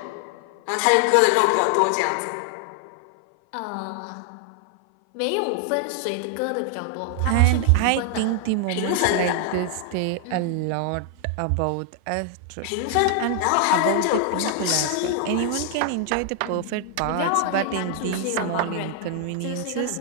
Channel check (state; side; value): different; both; correlation 0.00